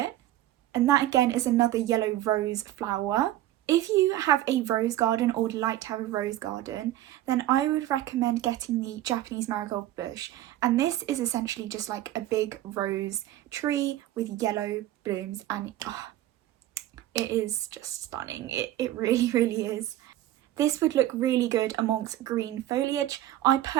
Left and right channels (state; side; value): quieter; left; 14.0 dB